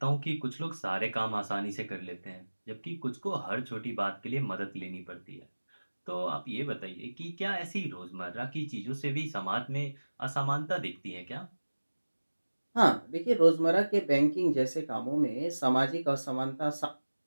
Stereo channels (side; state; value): both; inverted; correlation -1.00